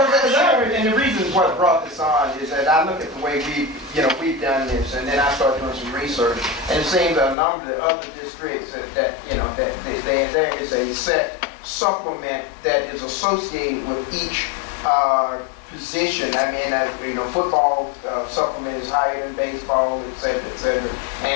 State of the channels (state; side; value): drops out; right; at 7.4 s